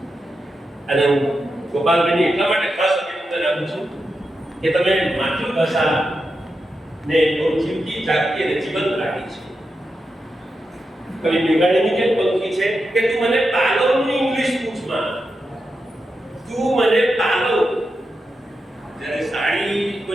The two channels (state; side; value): normal; both; correlation 0.88